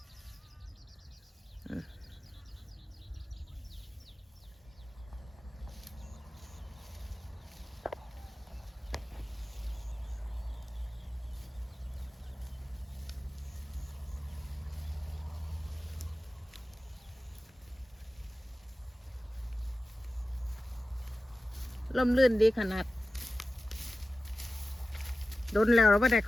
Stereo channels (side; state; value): both; normal; correlation 0.95